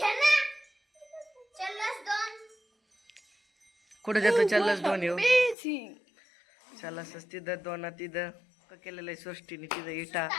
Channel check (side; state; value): right; drops out; at 5.6 s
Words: कुठे जातो. चल्लस 2 येऊ. चल्लस तिथं 2 तिथं पक्का केलेलं आहे सृष्टीने. तिथं